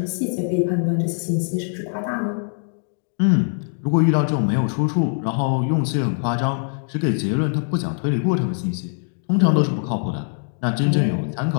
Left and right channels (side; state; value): right; silent; digital silence